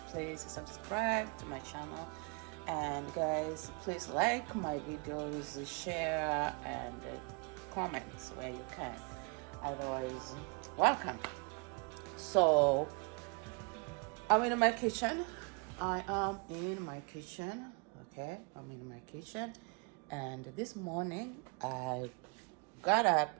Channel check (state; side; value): quieter; left; 34.3 dB